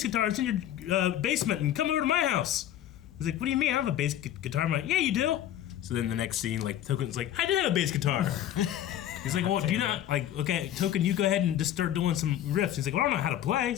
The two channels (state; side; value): quieter; right; 11.8 dB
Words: guitar. It's in your basement and come over to my house. He's like, what do you mean? I have a bass guitar. I'm like, yeah, you do. So then the next scene, like, Token's like, I do have a bass guitar. He's like, well, do you not, like, okay, Token, you go ahead and just start doing some riffs. He's like, well, I don't know how to play.